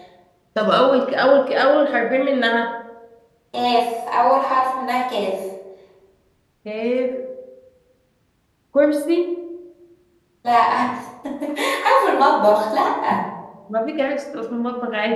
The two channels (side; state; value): both; identical; correlation 1.00